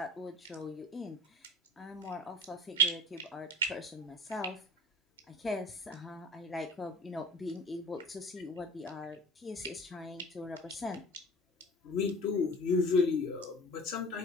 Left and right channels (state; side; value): normal; both; correlation 0.42